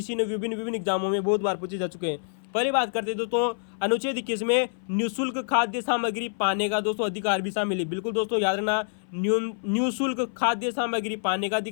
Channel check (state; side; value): silent; right; 58 dB below the other